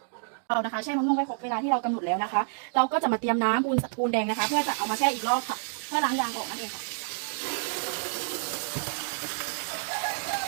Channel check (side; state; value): left; silent; digital silence